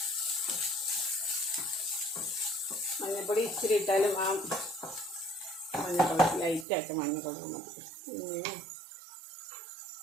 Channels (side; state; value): left; drops out; at 6.7 s